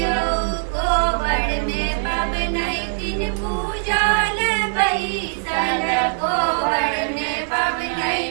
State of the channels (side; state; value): left; silent; digital silence